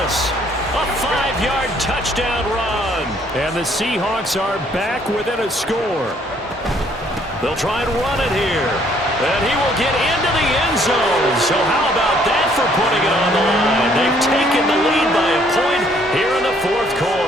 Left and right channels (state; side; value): normal; both; correlation 0.64